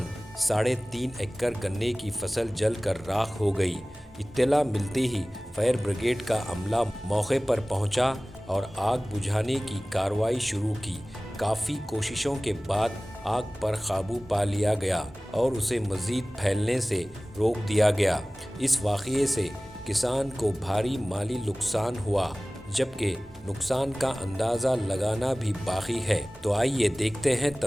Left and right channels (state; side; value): normal; both; correlation 0.98